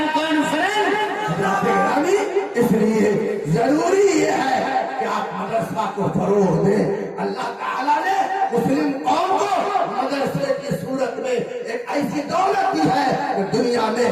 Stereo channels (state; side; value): identical; both; correlation 1.00